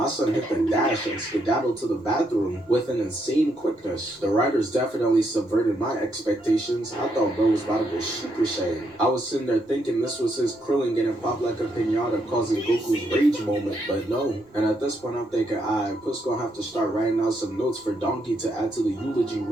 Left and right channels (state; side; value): normal; both; correlation 0.77